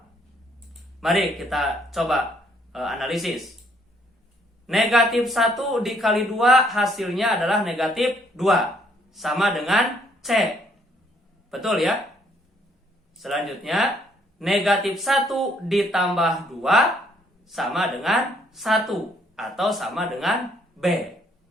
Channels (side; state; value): both; normal; correlation 0.67